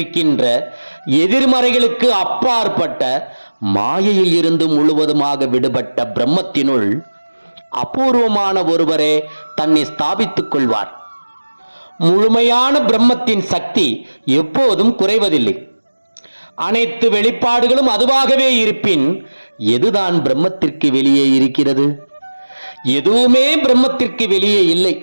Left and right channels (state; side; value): inverted; both; correlation -1.00